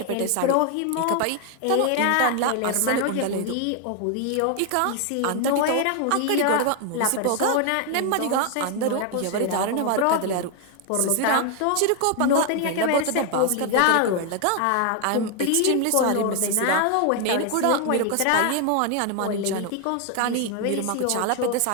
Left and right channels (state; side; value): different; both; correlation 0.01